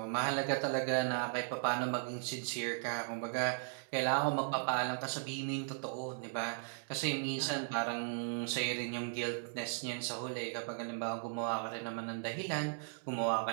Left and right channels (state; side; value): silent; left; digital silence